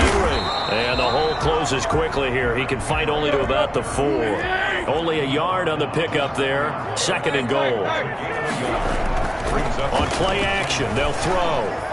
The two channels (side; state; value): both; identical; correlation 1.00